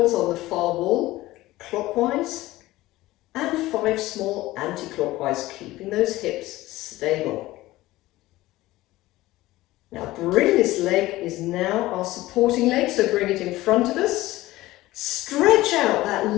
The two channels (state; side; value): quieter; right; 17.6 dB